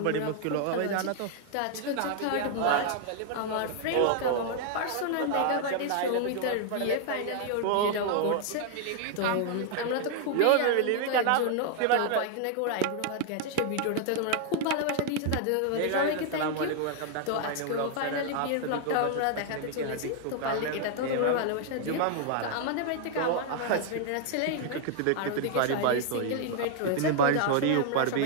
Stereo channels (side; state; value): both; different; correlation 0.00